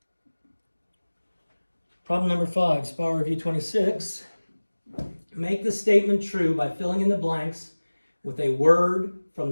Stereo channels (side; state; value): both; inverted; correlation -1.00